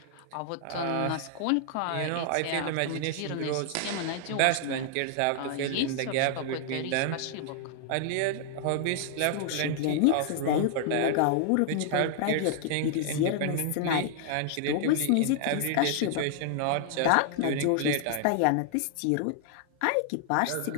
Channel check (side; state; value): both; different; correlation 0.00